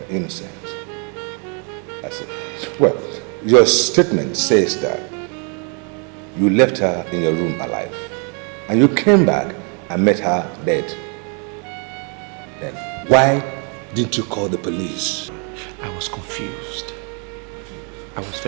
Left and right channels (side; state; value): left; quieter; 37.9 dB